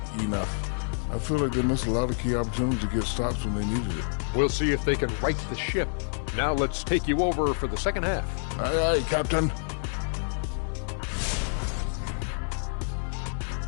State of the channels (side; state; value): right; silent; 59 dB below the other